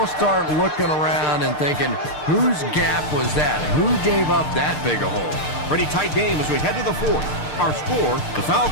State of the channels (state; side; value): late; right; 6.7 ms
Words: start looking around and thinking, whose gap was that? Who gave up that big a hole? Pretty tight game as we head to the 4th. Our score, the